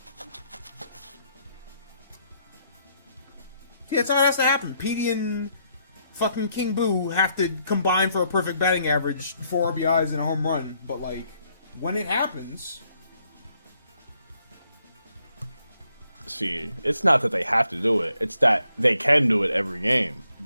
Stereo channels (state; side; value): inverted; both; correlation -0.73